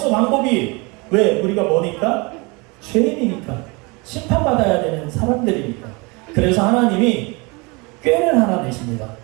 방법이. 왜? 우리가 뭐니까? 죄인이니까. 심판받아야 되는 사람들이니까. 그래서 하나님이 꾀를 하나 내십니다.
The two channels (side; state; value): left; quieter; 27.8 dB